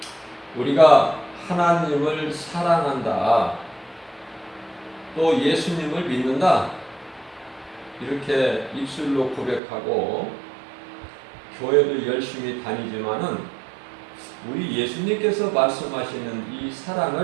우리가 하나님을 사랑한다, 또 예수님을 믿는다, 이렇게 입술로 고백하고 교회도 열심히 다니지만은 우리 예수님께서 말씀하시는 이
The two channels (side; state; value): left; drops out; at 9.6 s